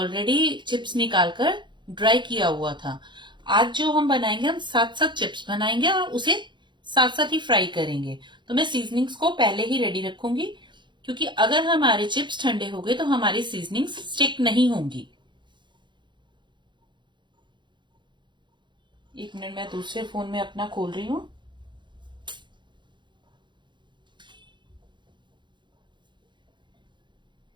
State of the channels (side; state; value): left; late; 0.23 ms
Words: चिप्स निकालकर ड्राई किया हुआ था। आज जो हम बनाएंगे, हम साथ साथ चिप्स बनाएंगे और उसे साथ साथ ही फ्राई करेंगे। तो मैं सीजनिंग्स को पहले ही रेडी रखूंगी, क्योंकि अगर हमारे चिप्स ठंडे हो गए तो हमारी सीजनिंग्स स्टिक नहीं होंगी। एक मिनट, मैं दूसरे फोन में अपना खोल रही हूँ।